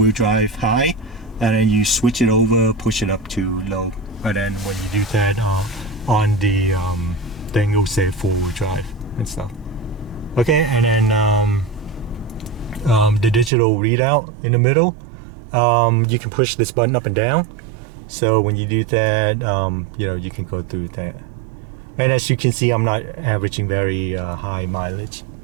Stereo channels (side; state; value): left; drops out; at 13.5 s